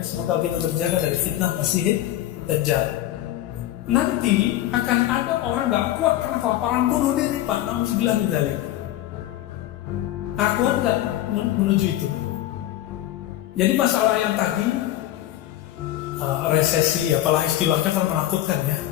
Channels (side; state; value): right; quieter; 13.6 dB